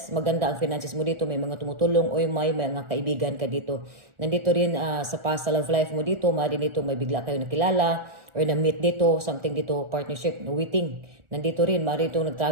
maganda ang finances mo dito, may mga tumutulong o may mga kaibigan ka dito. Nandito rin sa past love life mo dito, maaari dito may bigla kayo nakilala or na-meet dito, something dito, partnership, waiting. Nandito rin, maaari dito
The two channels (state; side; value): late; left; 1.4 ms